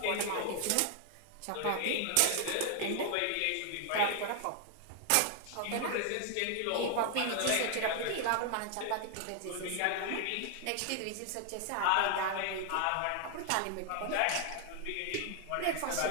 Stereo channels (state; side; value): different; both; correlation 0.00